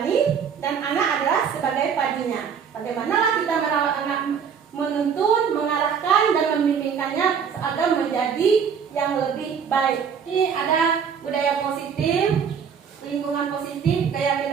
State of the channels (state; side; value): quieter; left; 7.0 dB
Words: dan anak adalah sebagai padinya. Bagaimana kita merawat anak, menuntun, mengarahkan dan membimbingkannya agar menjadi yang lebih baik. Ini ada budaya positif, lingkungan positif,